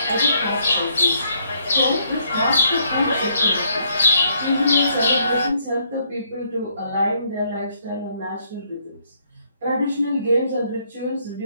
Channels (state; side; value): inverted; both; correlation -0.70